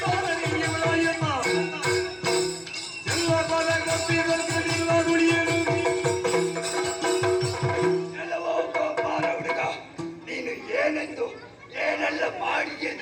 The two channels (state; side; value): identical; both; correlation 1.00